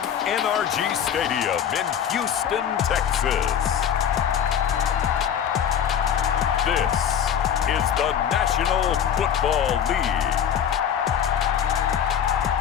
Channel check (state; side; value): quieter; right; 8.7 dB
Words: NRG Stadium in Houston, Texas, this is the National Football League.